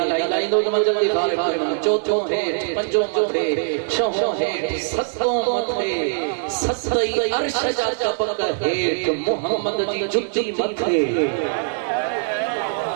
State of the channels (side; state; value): left; silent; digital silence